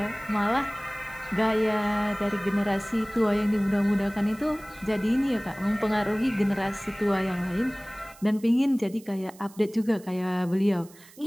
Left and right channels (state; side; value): noise; right; hiss, 23 dB below the sound